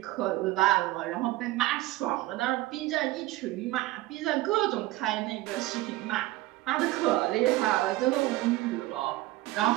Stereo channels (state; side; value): quieter; left; 17.7 dB